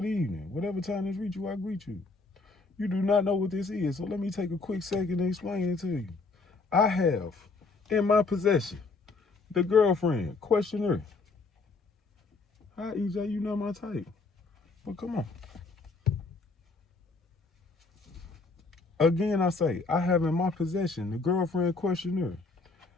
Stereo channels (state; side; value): quieter; right; 3.9 dB